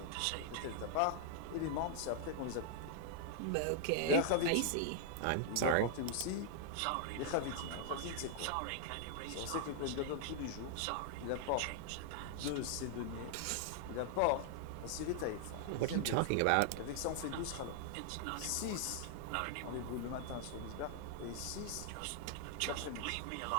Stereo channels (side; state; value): both; different; correlation -0.01